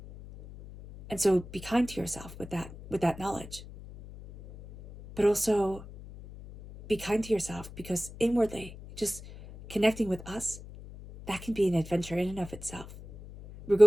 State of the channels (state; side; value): noise; left; hum, 15 dB below the sound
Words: And so be kind to yourself with that knowledge. But also be kind to yourself, because inwardly, just connecting with us, that can be an adventure in and of itself. We're